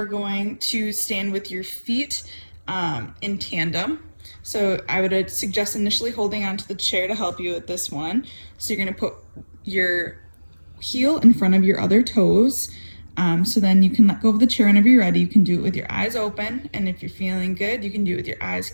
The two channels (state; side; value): inverted; both; correlation -1.00